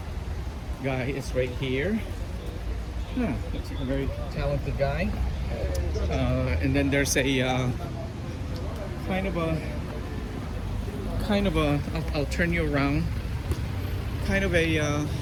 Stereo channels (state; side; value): identical; both; correlation 1.00